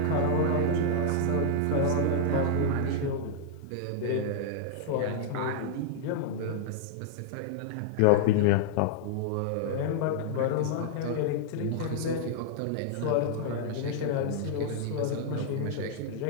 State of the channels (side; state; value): both; different; correlation -0.01